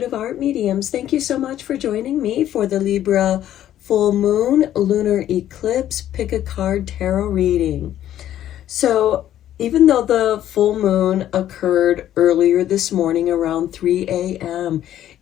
Art Mediums. Thank you so much for joining me for the Libra Full Moon Lunar Eclipse Pick a Card Tarot reading. So, even though the full moon occurred earlier this morning around 3 a.m.,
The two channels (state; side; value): quieter; right; 11.9 dB